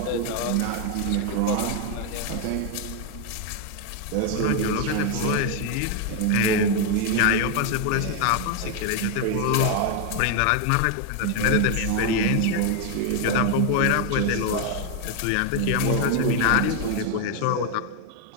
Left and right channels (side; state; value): both; different; correlation 0.01